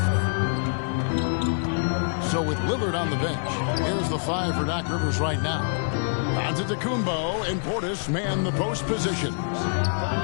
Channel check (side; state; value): right; silent; 61 dB below the other